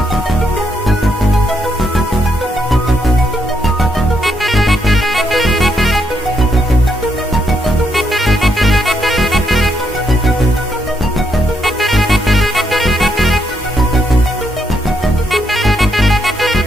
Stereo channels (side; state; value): both; normal; correlation 0.77